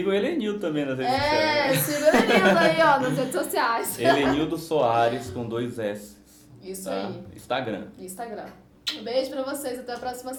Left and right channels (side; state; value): both; identical; correlation 1.00